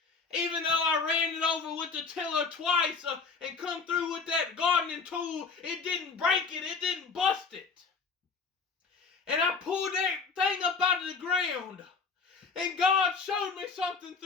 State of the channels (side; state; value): right; quieter; 4.9 dB